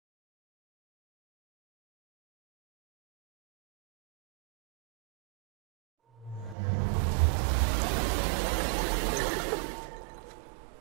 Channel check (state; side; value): drops out; left; at 6.6 s